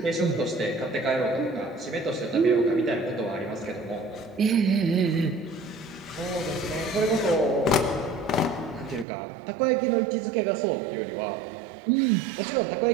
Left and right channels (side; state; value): left; drops out; at 9.1 s